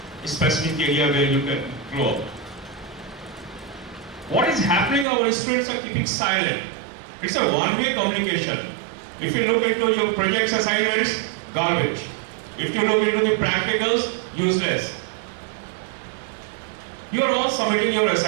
specific area where you can grow up. What is happening? Our students are keeping silent. It's a one-way communication. If you look into your projects assignments, garbage. If you look into the practicals, useless. You are all submitting your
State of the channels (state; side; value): drops out; left; at 5.1 s